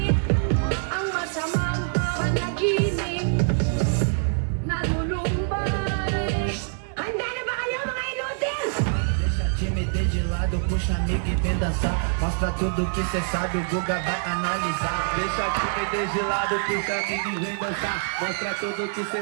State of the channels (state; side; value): silent; left; digital silence